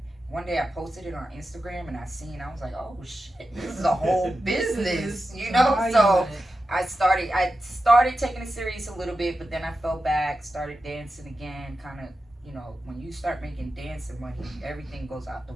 one day I posted it on Instagram, and I was like, oh shit, this is a whole business, you know? So I started taking it serious a little bit, but then I fell back, started dancing again, kind of, you know, when you start making dancing money, everything goes out the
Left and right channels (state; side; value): normal; both; correlation 0.91